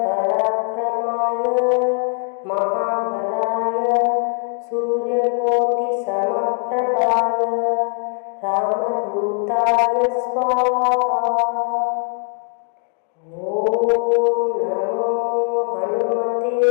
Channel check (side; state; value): right; quieter; 39.5 dB